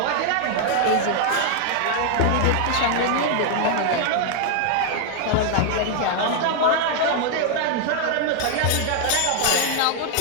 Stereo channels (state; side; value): different; both; correlation 0.00